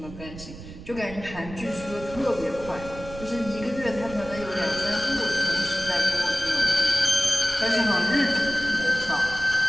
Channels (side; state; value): right; noise; rumble, 14 dB below the sound